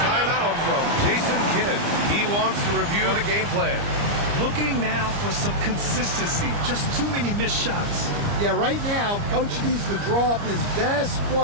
from Jason Kidd. He wants to review the game plan. Looking now for some consistency. Just too many missed shots. Yeah, right now, Coach needs to draw up his best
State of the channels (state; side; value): late; left; 29 ms